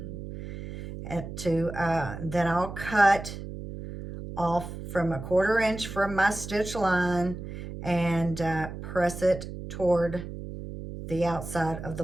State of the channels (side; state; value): right; noise; hum, 9 dB below the sound